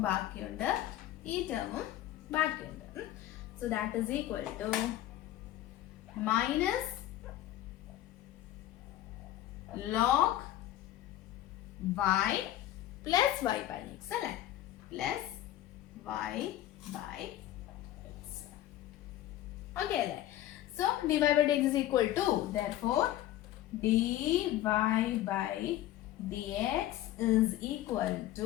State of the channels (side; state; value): right; quieter; 13.7 dB